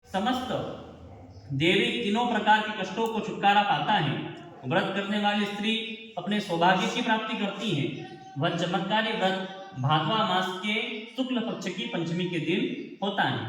समस्त देवी तीनों प्रकार के कष्टों को छुटकारा पाता है। व्रत करने वाली स्त्री अपने सौभाग्य की प्राप्ति करती है। वह चमत्कारी व्रत भादवा मास के शुक्ल पक्ष की पंचमी के दिन होता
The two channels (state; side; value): identical; both; correlation 1.00